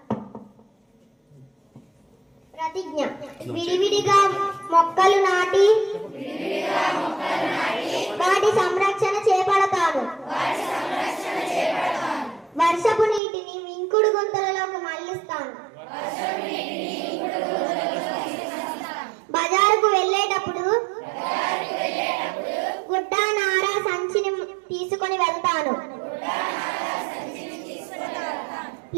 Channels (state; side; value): drops out; left; at 13.2 s